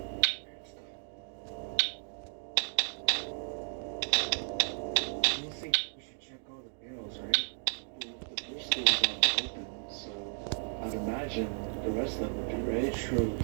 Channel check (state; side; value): silent; left; 55 dB below the other